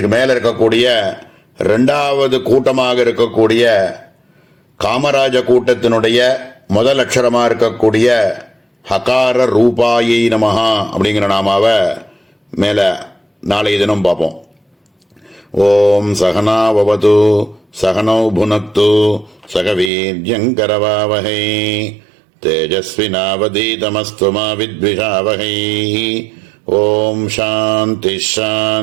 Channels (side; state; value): left; drops out; at 19.9 s